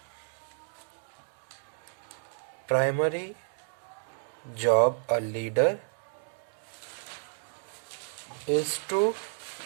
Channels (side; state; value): left; silent; 57 dB below the other